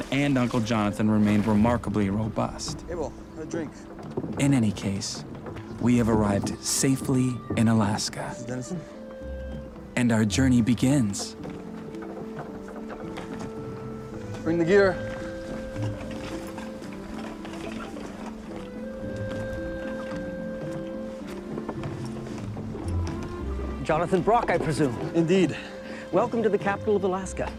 and Uncle Jonathan remained remarkably robust. Abel, a drink. In any case, we have arrived safely in Alaska, Dennison? and our journey begins. Bring the gear. Jonathan Brock, I presume. Indeed. Welcome to the capital of Alaska.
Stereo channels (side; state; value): both; identical; correlation 1.00